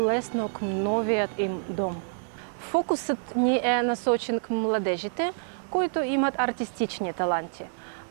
към новият им дом. Фокусът ни е насочен към младежите, които имат артистични таланти –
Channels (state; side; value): silent; left; digital silence